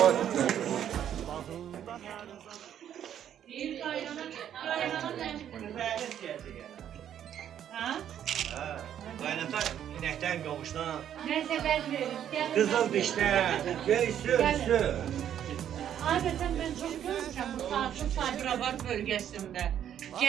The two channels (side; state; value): left; quieter; 10.0 dB